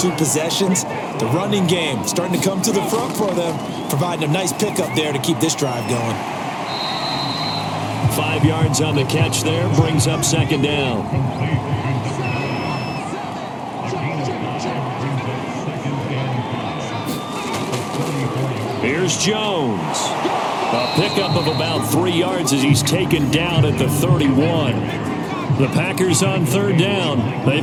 possessions. The running game starting to come to the front for them, providing a nice pickup there to keep this drive going. 5 yards on the catch there, brings up 2nd down. Here's Jones. A pickup of about 3 yards as he's taken down at the 31. The Packers on 3rd down.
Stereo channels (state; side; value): identical; both; correlation 1.00